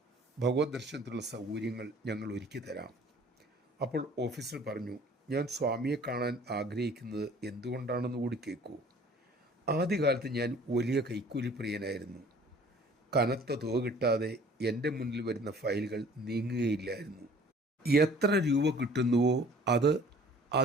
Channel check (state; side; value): normal; both; correlation 0.51